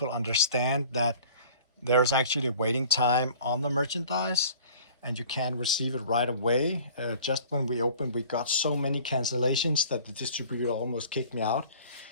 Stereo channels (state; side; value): inverted; both; correlation -0.47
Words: understand that there's actually a waiting time on the merchandise, and you can receive it right away. Just when we opened, we got so many cancellations that the distributor almost kicked me out.